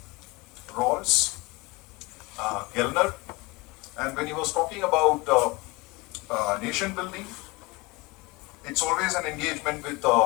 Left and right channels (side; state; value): right; quieter; 24.4 dB